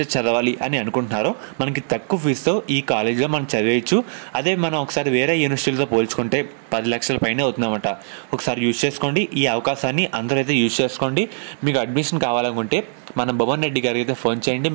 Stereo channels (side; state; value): left; silent; 57 dB below the other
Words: చదవాలి అని అనుకుంటున్నారో మనకి తక్కువ ఫీజుతో ఈ కాలేజ్లో మనం చదివేయచ్చు. అదే మనం ఒకసారి వేరే యూనివర్సిటీలతో పోల్చుకుంటే 10 లక్షల పైన అవుతుందన్నమాట. ఒకసారి యూజ్ చేసుకోండి ఈ అవకాశాన్ని, అందరూ అయితే యూజ్ చేసుకోండి. మీకు అడ్మిషన్ కావాలనుకుంటే మన భువన్ రెడ్డి గారికి అయితే ఫోన్ చేయండి.